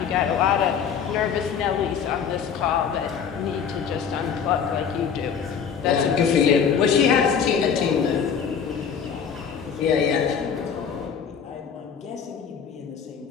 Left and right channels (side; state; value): right; quieter; 7.2 dB